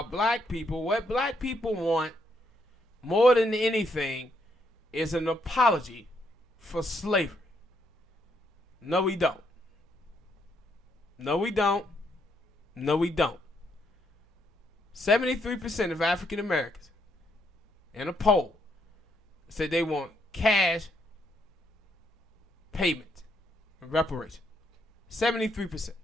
black people. What black people want more than anything is an apology for slavery. No, we don't. No, we don't. No, we don't. 73% of African Americans in a poll said they want cash payment and reparation. 73%.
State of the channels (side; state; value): both; normal; correlation 0.74